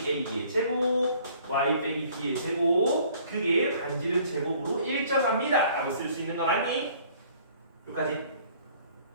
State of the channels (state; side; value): inverted; both; correlation -0.56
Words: a의 제곱, y 빼기 b의 제곱, 그게 반지름 제곱으로 일정합니다 라고 쓸 수 있는 거 맞니? 여기까지